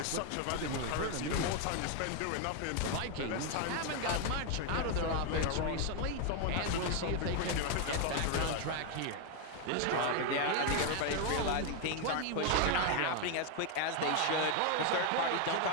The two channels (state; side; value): different; both; correlation 0.01